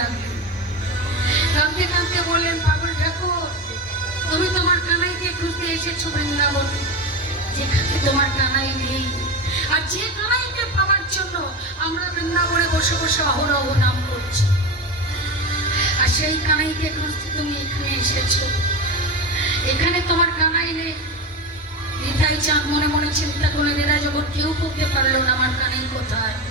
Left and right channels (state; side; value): normal; both; correlation 0.21